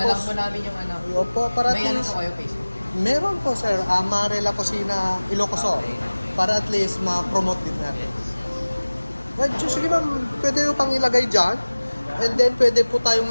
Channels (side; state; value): both; inverted; correlation -1.00